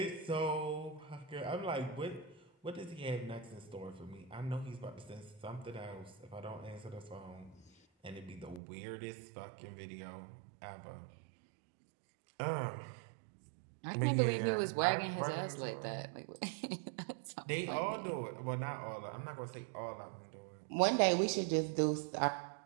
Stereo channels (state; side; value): drops out; left; at 8.6 s